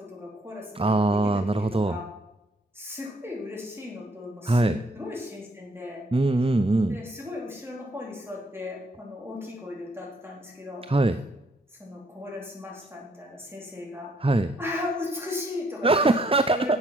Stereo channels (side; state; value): both; normal; correlation 0.68